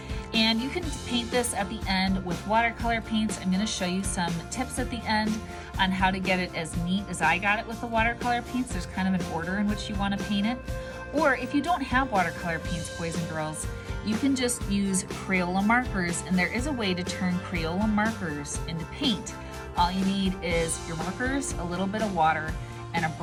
and you can paint this at the end with watercolor paints. I'm going to show you some tips at the end on how to get it as neat as I got it with the watercolor paints. There's kind of an order in which you want to paint it. Or if you don't have watercolor paints, boys and girls, you can just use Crayola markers, and there is a way to turn Crayola markers into paint. All you need is your markers, a little bit of water, and a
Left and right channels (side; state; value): both; identical; correlation 1.00